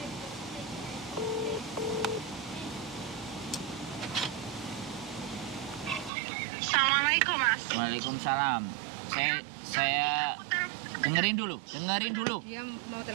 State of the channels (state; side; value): drops out; left; at 6.1 s